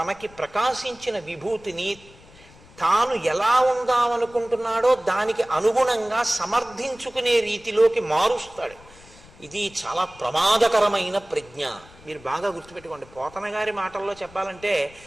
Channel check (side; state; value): left; noise; rumble, 23 dB below the sound